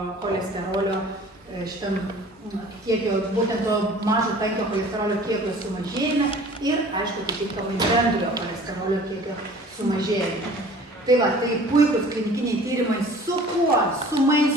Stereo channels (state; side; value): normal; both; correlation 0.47